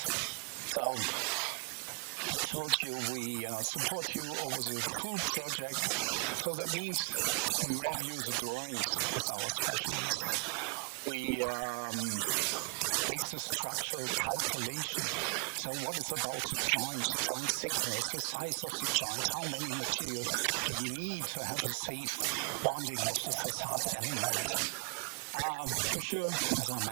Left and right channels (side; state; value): left; quieter; 37.5 dB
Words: so I told you we support you over the full project, so that means we review the drawings with our specialists. We make the structural calculation. So what is about the joint thickness, the size of the joint, how many material do you need to have a safe bonding of the facade element? For sure, as I